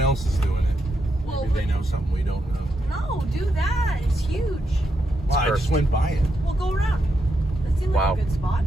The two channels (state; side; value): normal; both; correlation 0.82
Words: else is doing it. Well, Maybe they know something we don't know. No, do that. It's huge. Well, I just went by it. We'll go around. That seemed like Wow. a good spot.